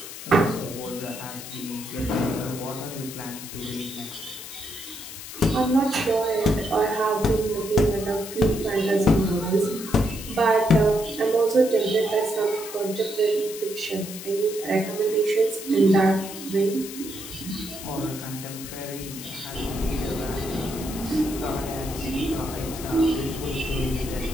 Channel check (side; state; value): left; noise; hiss, 11 dB below the sound